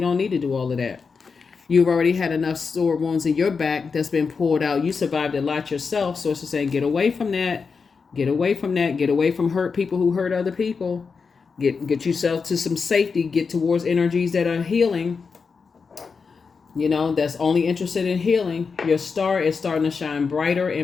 need to do all of that. You've already had enough sore wounds in your back that's been pulled out. You survived a lot yourself. Source is saying, get away from that. Get away from that. Get away from hurt people who hurt other people. Get yourself to some safety. Get towards energies that are healing. That's only interested in healing. Your star is starting to shine brighter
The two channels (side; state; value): right; quieter; 5.2 dB